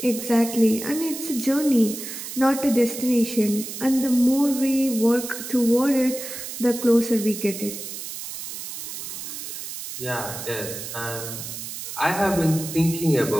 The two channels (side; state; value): right; noise; hiss, 8 dB below the sound